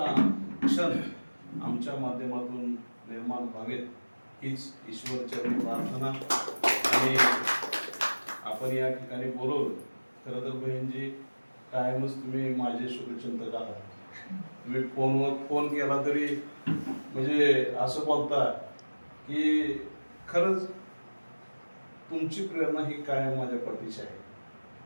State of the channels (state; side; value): inverted; both; correlation -1.00